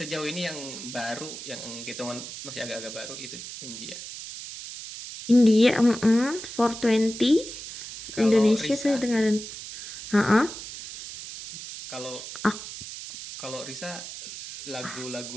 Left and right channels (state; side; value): noise; right; hiss, 10 dB below the sound